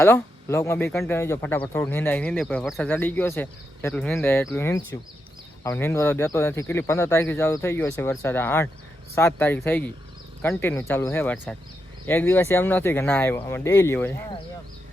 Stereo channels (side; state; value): both; normal; correlation 0.84